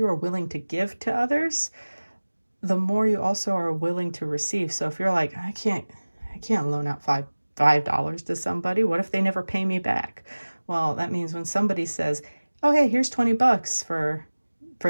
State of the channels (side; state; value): both; inverted; correlation -1.00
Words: are willing to give to others, the more you also are willing to receive. So if you're like, I can't loan out $5 to somebody, what if they never pay me back? Well, that means when somebody says, oh, hey, here's $20